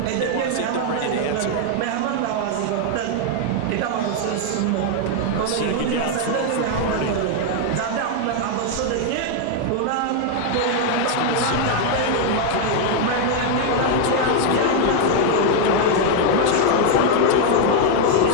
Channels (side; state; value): both; different; correlation 0.00